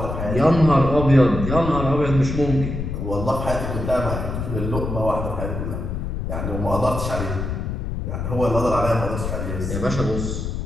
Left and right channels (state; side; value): noise; left; rumble, 4 dB below the sound